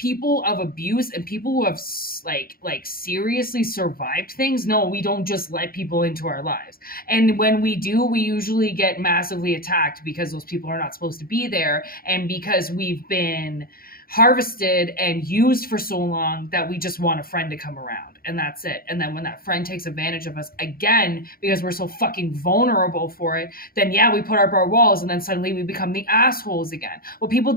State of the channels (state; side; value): late; right; 0.43 ms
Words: of abuse and people who have like seriously survived things, no, we don't just let people into our lives. And when we do, we usually get massively attacked because those people are not supposed to be there, and because we've been harvested and used for so long that we just want a friend to come around, and that's it. And then when that friend takes advantage of us again because we're so fucking vulnerable for it, then yeah, we put up our walls, and then suddenly we become the assholes again. Well, people